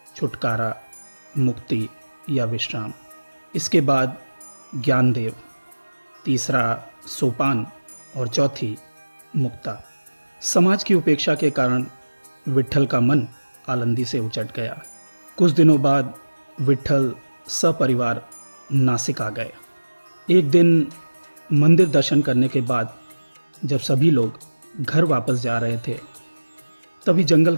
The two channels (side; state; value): both; inverted; correlation -1.00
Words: छुटकारा, मुक्ति या विश्राम। इसके बाद ज्ञानदेव, तीसरा सोपान और चौथी मुक्ता। समाज की उपेक्षा के कारण विट्ठल का मन आलंदी से उचट गया। कुछ दिनों बाद विट्ठल सपरिवार नासिक आ गए। एक दिन मंदिर दर्शन करने के बाद जब सभी लोग घर वापस जा रहे थे, तभी जंगल